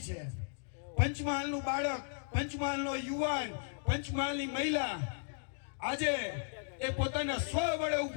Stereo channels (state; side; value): silent; right; digital silence